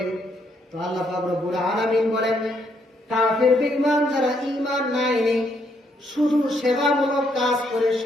তো আল্লাহ পাক রব্বুল আলামিন বলেন, কাফের বেঈমান যারা ঈমান না এনে শুধু সেবামূলক কাজ করে,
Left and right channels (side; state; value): both; normal; correlation 0.73